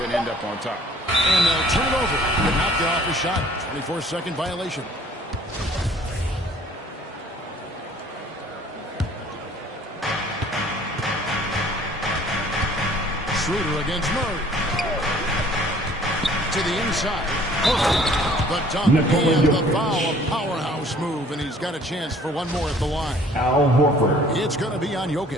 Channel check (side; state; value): both; normal; correlation 0.54